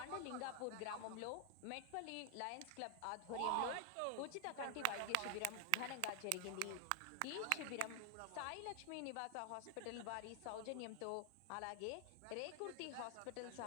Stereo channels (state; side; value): different; both; correlation 0.00